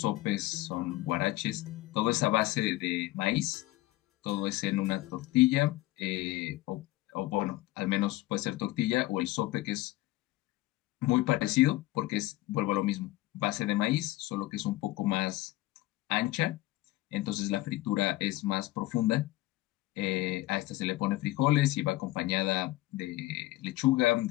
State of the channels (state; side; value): quieter; right; 18.0 dB